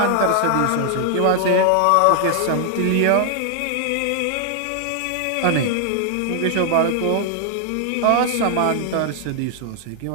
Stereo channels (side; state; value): both; different; correlation 0.00